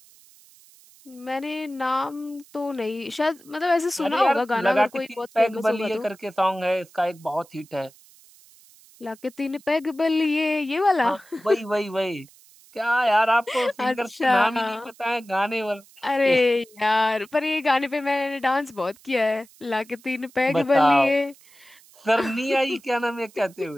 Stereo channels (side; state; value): right; noise; hiss, 26 dB below the sound